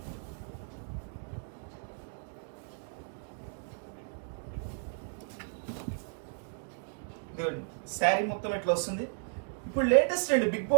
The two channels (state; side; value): silent; left; digital silence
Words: శారీ మొత్తం ఎట్లా వస్తుంది. ఇప్పుడు లేటెస్ట్ అండి, బిగ్